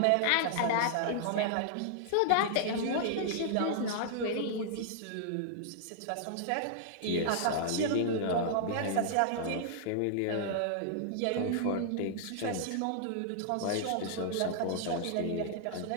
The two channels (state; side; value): different; both; correlation -0.01